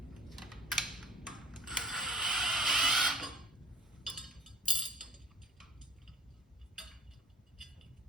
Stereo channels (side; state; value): both; normal; correlation 0.46